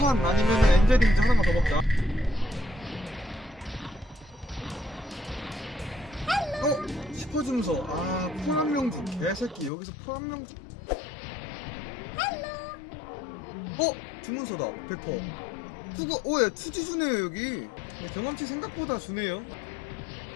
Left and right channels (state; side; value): drops out; right; at 9.7 s